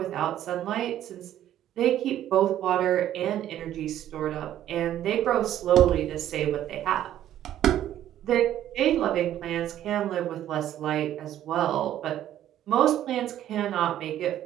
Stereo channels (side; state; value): left; quieter; 11.9 dB